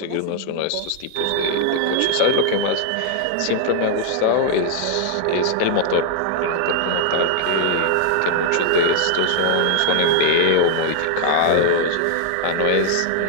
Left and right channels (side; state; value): both; different; correlation -0.01